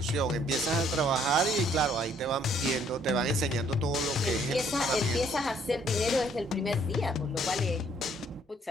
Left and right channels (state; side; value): normal; both; correlation 0.64